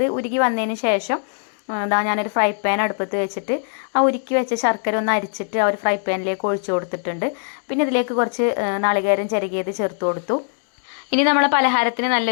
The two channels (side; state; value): right; silent; 65 dB below the other